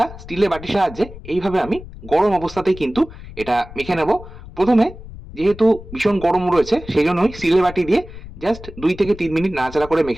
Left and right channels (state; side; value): noise; left; rumble, 15 dB below the sound